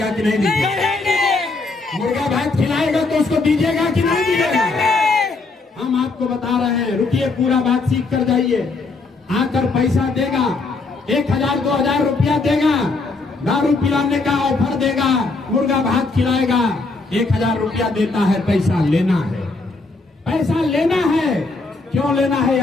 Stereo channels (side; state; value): right; quieter; 3.7 dB